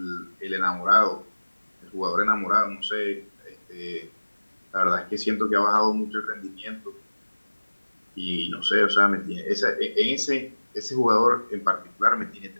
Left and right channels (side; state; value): both; inverted; correlation -1.00